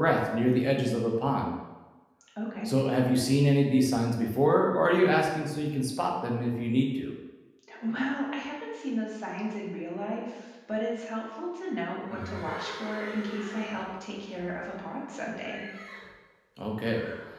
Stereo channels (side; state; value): both; identical; correlation 1.00